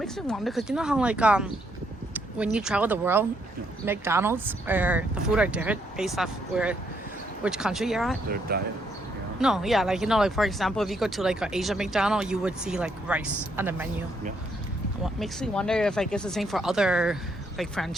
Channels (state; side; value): normal; both; correlation 0.74